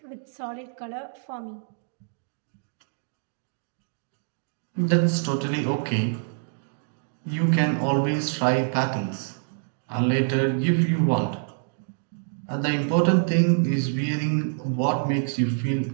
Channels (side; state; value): left; silent; digital silence